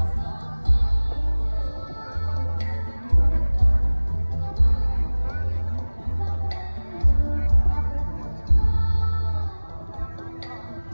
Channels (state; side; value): inverted; both; correlation -1.00